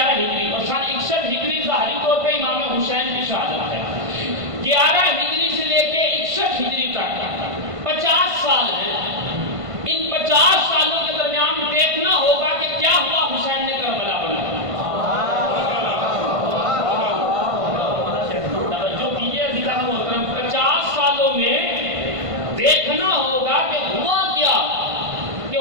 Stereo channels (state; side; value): late; left; 1.5 ms